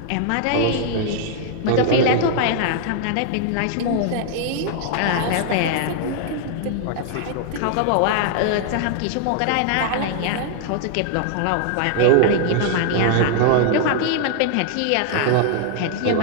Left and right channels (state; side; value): different; both; correlation 0.00